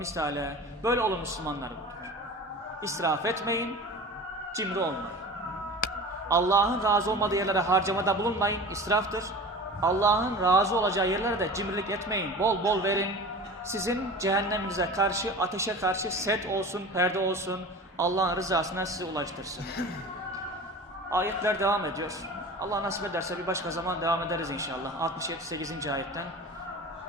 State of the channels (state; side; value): normal; both; correlation 0.36